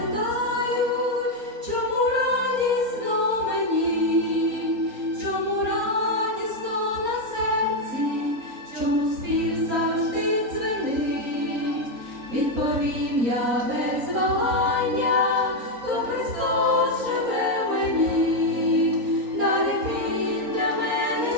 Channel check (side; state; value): left; late; 4.3 ms